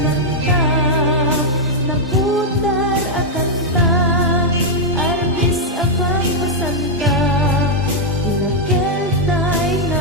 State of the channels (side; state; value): both; normal; correlation -0.03